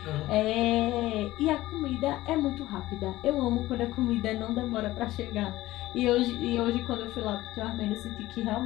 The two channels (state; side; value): quieter; right; 16.7 dB